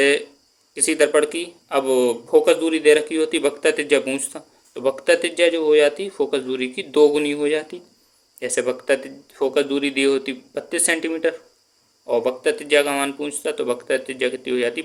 किसी दर्पण की अब फोकस दूरी दे रखी होती, वक्रता त्रिज्या पूछता, तो वक्रता त्रिज्या जो हो जाती फोकस दूरी की 2 गुनी हो जाती। जैसे फोकस दूरी दी होती 32 सेंटीमीटर और वक्रता त्रिज्या का मान पूछता, तो वक्रता त्रिज्या कितनी हो जाती,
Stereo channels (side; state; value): both; identical; correlation 1.00